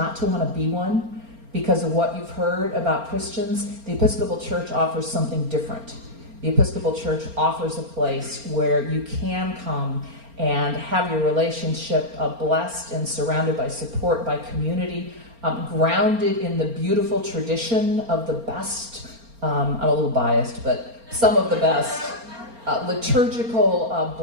to want to be one, because of what you've heard about Christians, the Episcopal Church offers something different. The Episcopal Church offers a place where you can come and have your relationship blessed and surrounded by support, by community, grounded in the beautiful tradition of the best, I'm a little biased, but some of the best liturgical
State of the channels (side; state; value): left; late; 4.3 ms